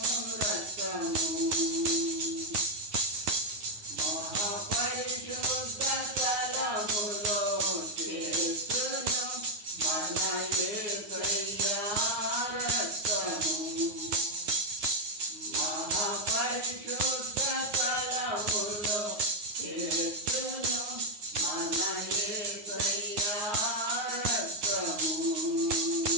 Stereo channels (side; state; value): left; late; 9.5 ms